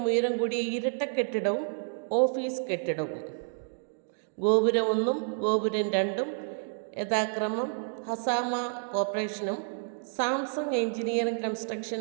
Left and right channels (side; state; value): left; silent; digital silence